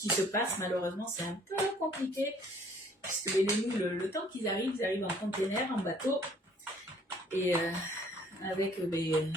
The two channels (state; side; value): normal; both; correlation 0.59